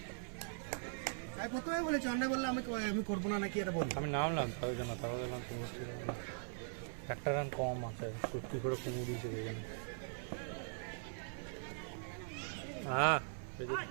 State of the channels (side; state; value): left; silent; 50 dB below the other